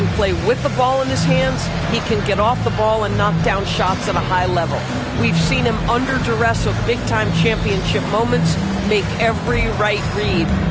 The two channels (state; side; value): identical; both; correlation 1.00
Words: play with the ball in his hands. He can get off the ball and knock down shots at a high level. We've seen him under duress of big-time championship moments make every right read.